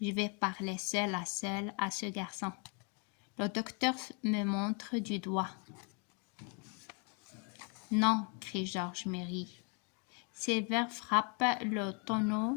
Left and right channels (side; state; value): right; quieter; 34.1 dB